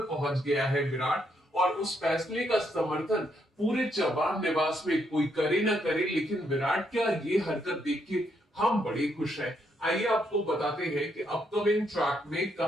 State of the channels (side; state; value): both; normal; correlation 0.76